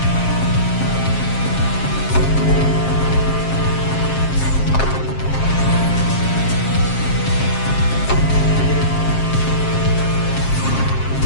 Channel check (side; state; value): right; late; 7.5 ms